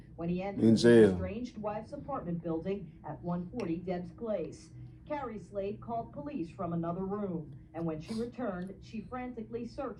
when he entered In his jail. estranged wife's apartment building at 140 Debs Place. Carrie Slade called police from another room, and when she returned, she frantically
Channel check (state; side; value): identical; both; correlation 1.00